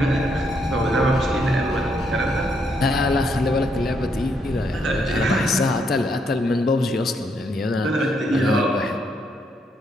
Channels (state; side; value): normal; both; correlation 0.75